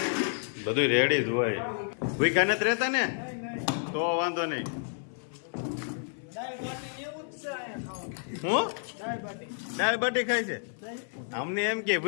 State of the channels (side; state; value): right; silent; 58 dB below the other